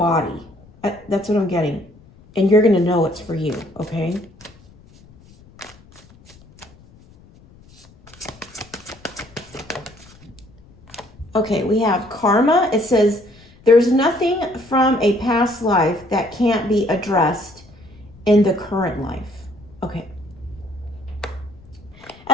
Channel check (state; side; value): noise; left; rumble, 25 dB below the sound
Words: That's what I'm getting. And you're going to know it's for you, okay? Okay, we have karma. It says, there's nothing from a past life that can't be addressed in the current life. Okay.